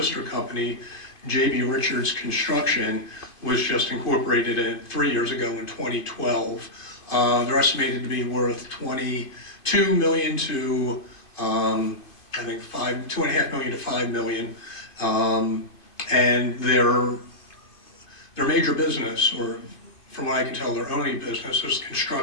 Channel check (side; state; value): right; late; 2.5 ms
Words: company. J.B. Richards Construction was just incorporated 3 years ago in 2012. They're estimated to be worth $22 million to I think $2.5 million to $5 million, and their major business, or from what I can tell, their only business, is